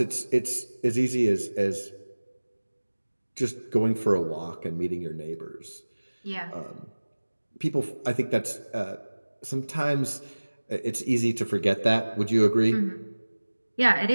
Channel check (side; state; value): both; inverted; correlation -1.00